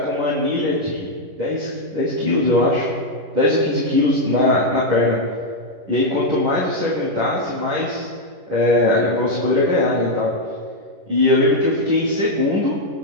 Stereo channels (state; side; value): late; left; 10 ms